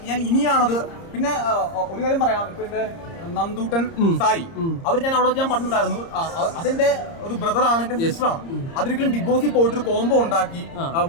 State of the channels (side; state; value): right; late; 30 ms